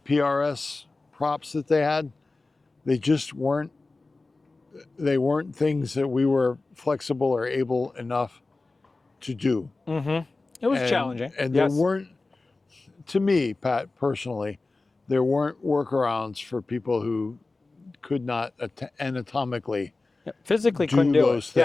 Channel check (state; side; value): quieter; right; 3.4 dB